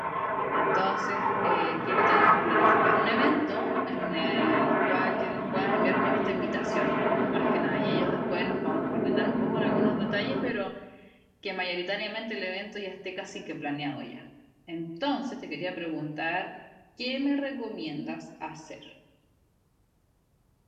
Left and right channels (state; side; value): identical; both; correlation 1.00